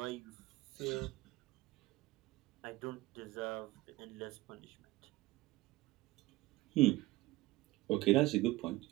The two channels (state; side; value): quieter; left; 19.4 dB